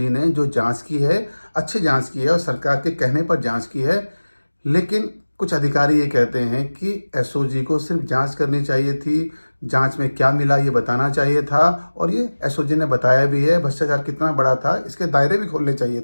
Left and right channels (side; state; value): both; inverted; correlation -1.00